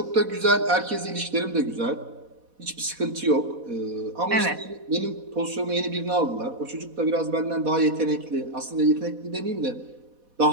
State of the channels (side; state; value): left; late; 4.1 ms